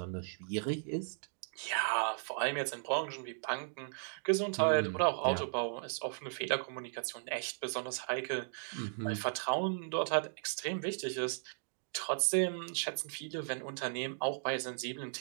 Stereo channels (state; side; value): silent; left; digital silence